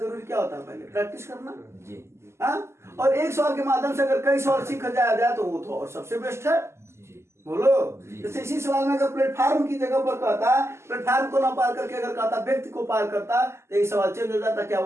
क्या होता है? पहले प्रैक्टिस करना जी। हाँ, और एक सवाल के माध्यम से अगर कई सवाल सीखा जाए तो वो तो और सबसे बेस्ट है। बोलो, जैसे इसी सवाल में अगर प्लेटफार्म की जगह पर कहता प्लेटफार्म को ना पार करके अगर कहता व्यक्ति को पार करता तो ये सवाल चेंज हो जाता। क्या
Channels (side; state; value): left; late; 0.13 ms